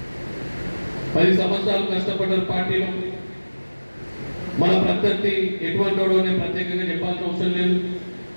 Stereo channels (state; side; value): inverted; both; correlation -1.00